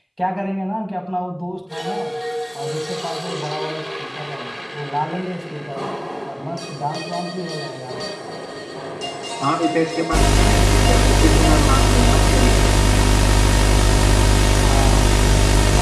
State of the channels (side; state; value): both; identical; correlation 1.00